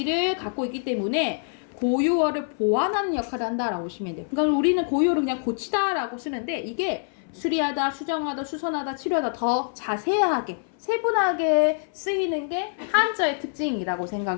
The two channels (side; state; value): right; silent; 58 dB below the other